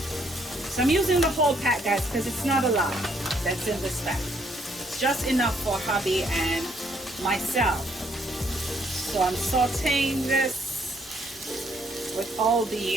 So I'm using the whole pack, guys, because it's not a lot that's in this pack. It's just enough for hubby and myself. So I'm sauteing this with all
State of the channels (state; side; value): normal; both; correlation 0.69